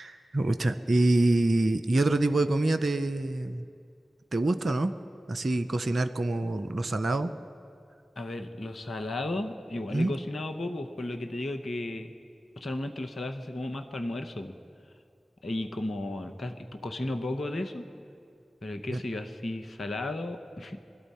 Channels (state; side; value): normal; both; correlation 0.94